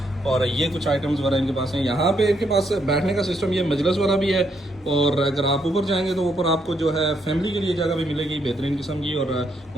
और ये कुछ आइटम्स वगैरह इनके पास हैं। यहाँ पे इनके पास बैठने का सिस्टम ये मजलिस वाला भी है। और अगर आप ऊपर जाएंगे तो ऊपर आपको जो है फैमिली के लिए जगह भी मिलेगी बेहतरीन किस्म की। और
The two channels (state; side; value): normal; both; correlation 0.75